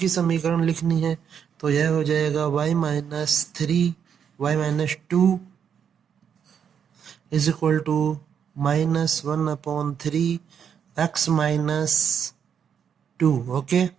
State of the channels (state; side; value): quieter; left; 7.8 dB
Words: समीकरण लिखनी है। तो यह हो जाएगा y minus 2 is equal to -1 upon 3 x minus 2। Okay,